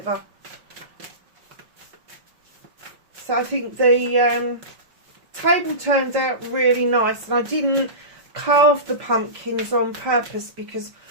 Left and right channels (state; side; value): late; left; 5.2 ms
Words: So I think the table turned out really nice, and I didn't carve the pumpkins on purpose because